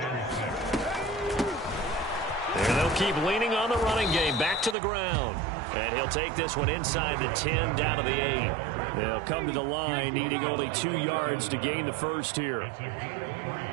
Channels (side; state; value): left; drops out; at 4.8 s